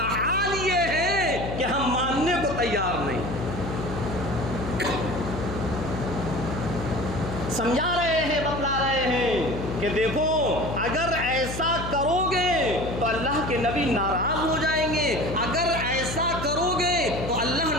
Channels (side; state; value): left; noise; hum, 6 dB below the sound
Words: حال یہ ہے کہ ہم ماننے کو تیار نہیں۔ سمجھا رہے ہیں، بتلا رہے ہیں کہ دیکھو اگر ایسا کرو گے تو اللہ کے نبی ناراض ہو جائیں گے، اگر ایسا کرو گے تو اللہ